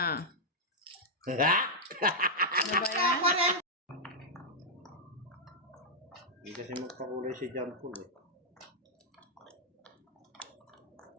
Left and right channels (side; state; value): both; normal; correlation -0.07